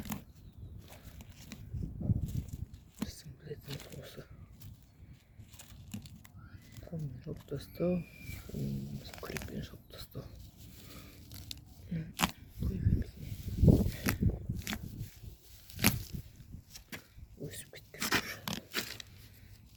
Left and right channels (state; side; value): identical; both; correlation 1.00